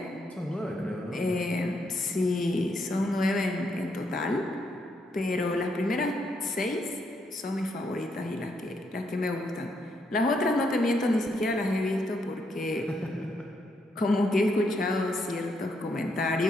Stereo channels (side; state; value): both; normal; correlation 0.77